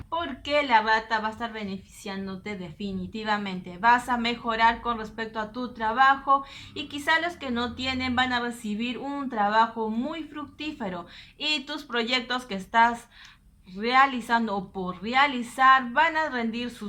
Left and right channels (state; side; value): identical; both; correlation 1.00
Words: porque la rata va a estar beneficiándote definitivamente. Vas a mejorar con respecto a tu trabajo y quizá los que no tienen van a recibir un trabajo muy fructífero y tus proyectos que estás realizando o por realizar van a rendir